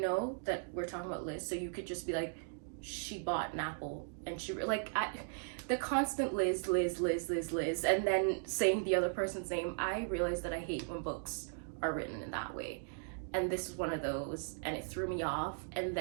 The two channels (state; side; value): silent; left; digital silence